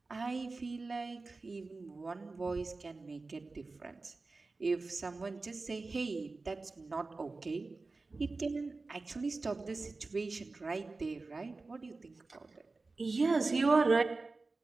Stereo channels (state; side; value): quieter; left; 3.7 dB